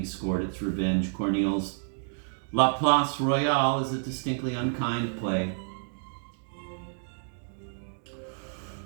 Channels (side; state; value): left; silent; digital silence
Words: scored its revenge. Corneille's La Place Royale is a distinctly unkind play.